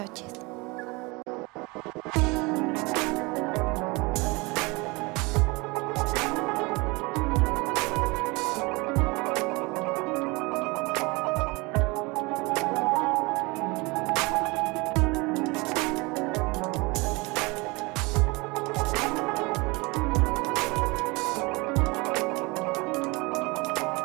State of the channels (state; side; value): quieter; left; 25.8 dB